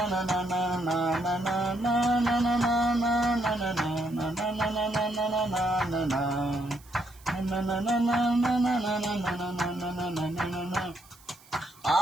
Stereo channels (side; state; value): right; noise; hiss, 25 dB below the sound